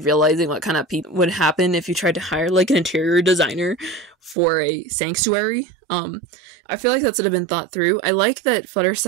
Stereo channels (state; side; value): drops out; left; at 4.4 s